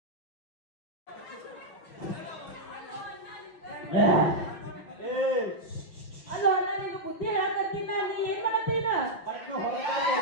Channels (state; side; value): late; right; 6.0 ms